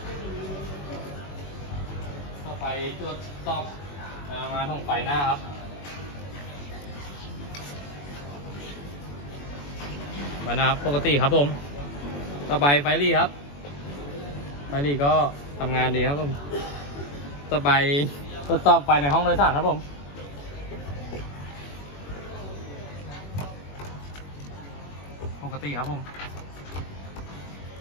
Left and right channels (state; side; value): late; right; 21 ms